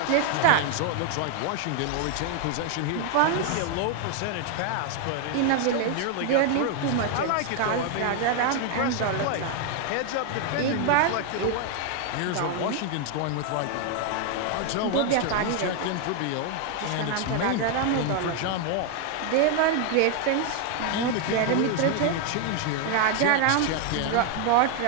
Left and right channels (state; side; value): different; both; correlation 0.00